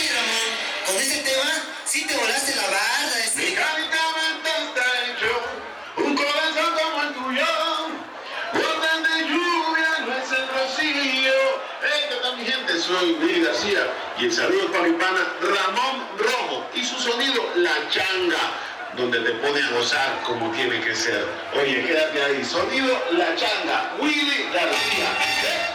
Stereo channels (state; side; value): identical; both; correlation 1.00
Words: Ramón, con ese tema sí te volaste la barda. Mi carita está hecho un corazón como el tuyo. Gotas de lluvia no es el rocío. ¿Qué tal, mi gente? Soy Willy García y el saludo para mi pana Ramón Rojo y su sonido La Changa, donde te pone a gozar como tiene que ser. Oye, quédate ahí. Sonido La Changa, Willy García.